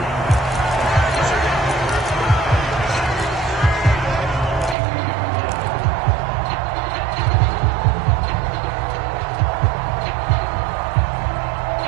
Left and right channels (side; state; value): left; drops out; at 4.8 s